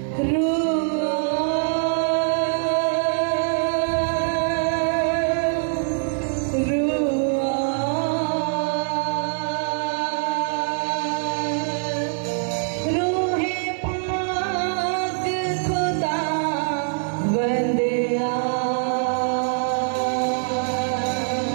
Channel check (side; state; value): left; silent; 63 dB below the other